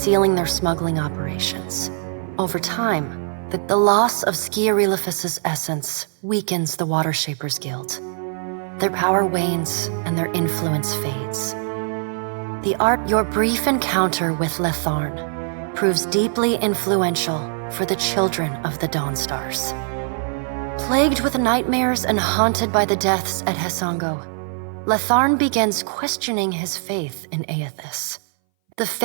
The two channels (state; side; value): silent; left; 60 dB below the other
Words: their smuggling operations. Over time, the loss of Skiarilifus's essence weakens the Water Shapers Guild. Their power wanes and their influence fades. Your brief encounter with Letharn proves deeply influential for the children of the Dawnstars. Plagued with nightmares and haunted by the deaths at Hesango, Letharn begins questioning his faith in Aethys. The